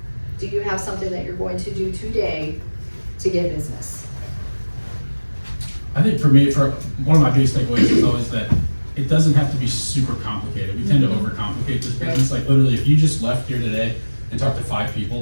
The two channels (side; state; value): both; inverted; correlation -1.00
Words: Do you have something that you're going to do today to get business? I think for me, for one of my biggest takeaways is always that it doesn't have to be super complicated. We tend to overcomplicate this business. Like literally, if you just left here today and talked to 5